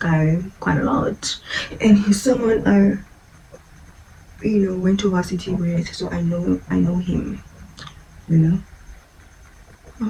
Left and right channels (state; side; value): identical; both; correlation 1.00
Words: quite a lot, and he's someone I, you know, went to varsity with, so I know him. You know,